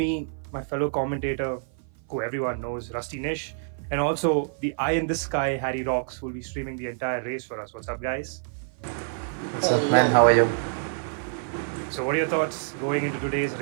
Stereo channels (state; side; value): silent; left; 55 dB below the other